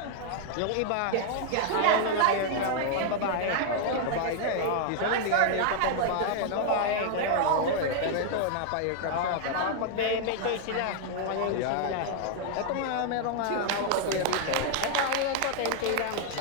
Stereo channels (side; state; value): both; different; correlation 0.00